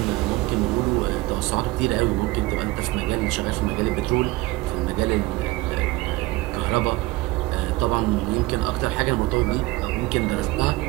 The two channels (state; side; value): quieter; left; 20.5 dB